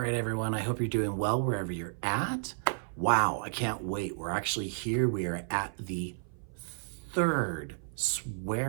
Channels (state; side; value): silent; left; 55 dB below the other